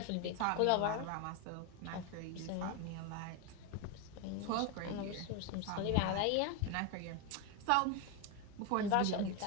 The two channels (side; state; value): both; different; correlation 0.02